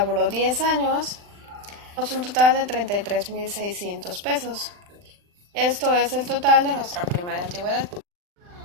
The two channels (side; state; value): left; late; 39 ms